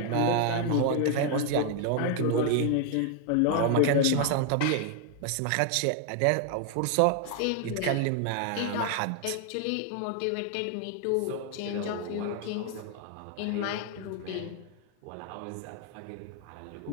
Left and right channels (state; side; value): different; both; correlation 0.00